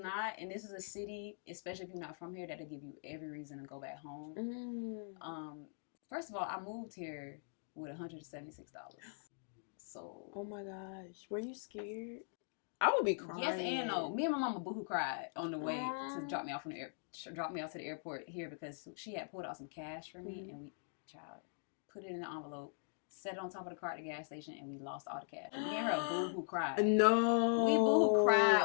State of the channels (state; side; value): silent; right; digital silence